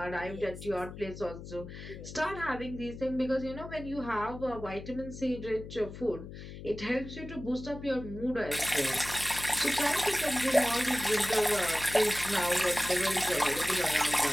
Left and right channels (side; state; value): left; noise; hum, 12 dB below the sound